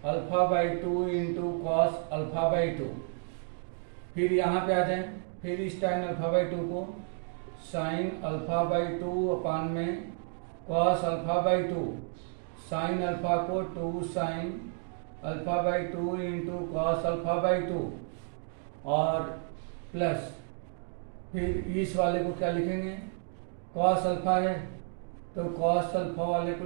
alpha by 2 into cos alpha by 2। फिर यहाँ पे आ जाए, फिर इस tan अल्फा बाई 2 को साइन अल्फा बाई 2 अपान में cos alpha by 2, sine alpha को 2 sine alpha by 2 into cos alpha by 2, और प्लस फिर इस वाले को क्या लिखेंगे, कॉस अल्फा है तो कॉस अल्फा वाले को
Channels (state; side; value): silent; left; 55 dB below the other